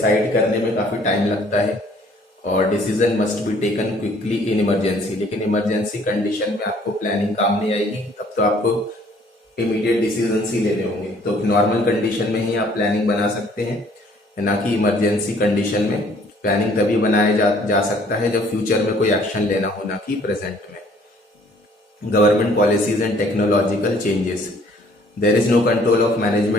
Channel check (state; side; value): normal; both; correlation 0.59